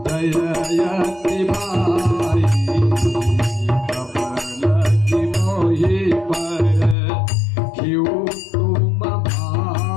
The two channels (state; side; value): drops out; right; at 7.0 s